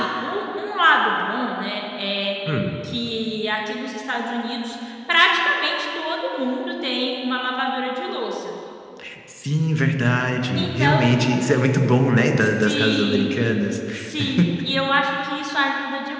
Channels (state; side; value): identical; both; correlation 1.00